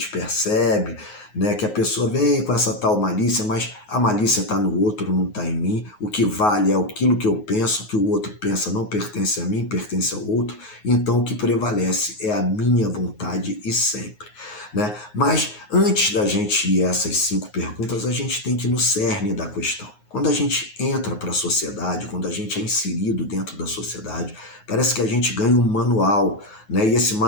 percebe, que a pessoa vem com essa tal malícia, mas a malícia está no outro, não está em mim. O que vale é aquilo que eu penso, o que o outro pensa não pertence a mim, pertence ao outro. Então o que prevalece é a minha vontade e sempre. Mas antes da gente ir a essas 5 perguntas, a gente tem que ir no cerne da questão. Quando a gente entra para a sociedade, quando a gente é inserido dentro da sociedade, parece que a gente ganha um manual, E esse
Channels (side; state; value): right; late; 9.5 ms